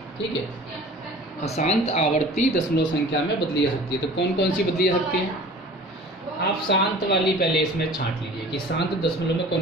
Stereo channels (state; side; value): normal; both; correlation 0.44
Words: ठीक है, अशांत आवर्ती दशमलव संख्या में बदली जा सकती है। तो कौन कौन सी बदली जा सकती है? आप शांत वाली पहले इसमें छांट लीजिए कि शांत दशमलव में